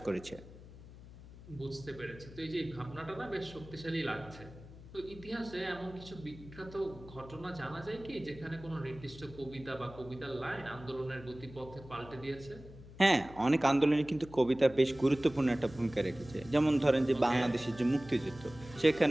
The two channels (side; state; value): left; noise; hum, 17 dB below the sound